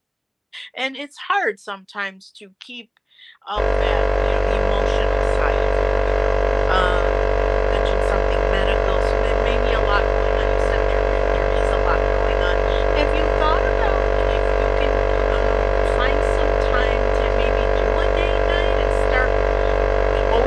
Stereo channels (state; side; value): identical; both; correlation 1.00